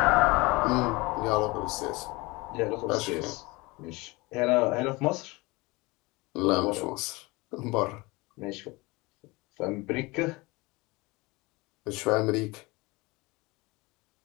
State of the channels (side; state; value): right; quieter; 23.7 dB